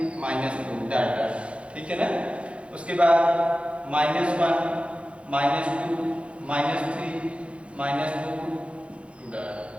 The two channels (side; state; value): left; late; 0.060 ms